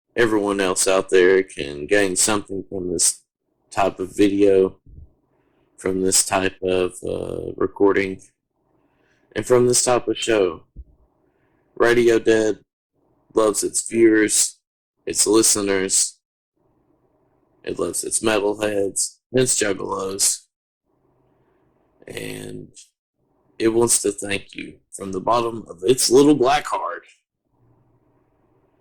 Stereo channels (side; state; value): both; identical; correlation 1.00